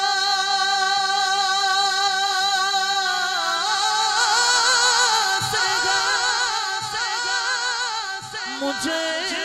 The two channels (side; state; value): both; identical; correlation 1.00